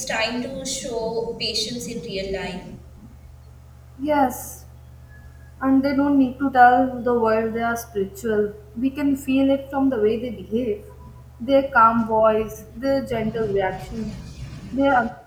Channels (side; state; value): both; identical; correlation 1.00